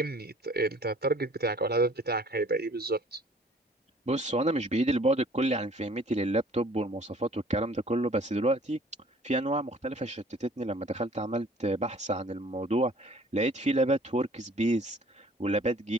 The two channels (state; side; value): normal; both; correlation 0.53